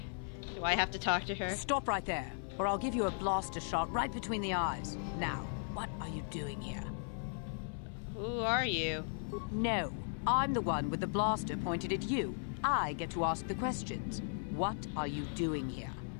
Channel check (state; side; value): silent; right; digital silence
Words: I have to talk to her? Stop right there, or I'll give you a blaster shot right between the eyes. Now, what are you doing here? Who are you? No, I'm the one with the blaster pointed at you. I get to ask the questions. What are you doing here?